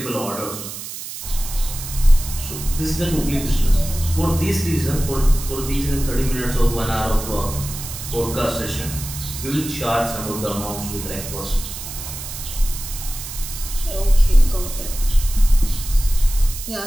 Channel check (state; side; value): noise; right; hiss, 9 dB below the sound